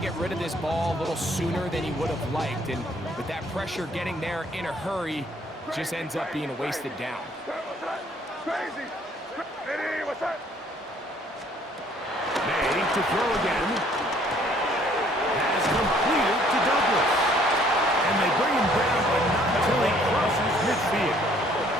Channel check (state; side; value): normal; both; correlation 0.61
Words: rid of this ball a little sooner than he would have liked. And with that pressure getting there in a hurry, just ends up being a wasted down. May to throw again. Has completed to Douglas. And they bring him down, but not until he crosses midfield.